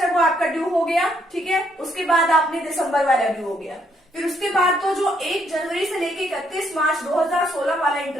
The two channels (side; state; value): both; normal; correlation 0.72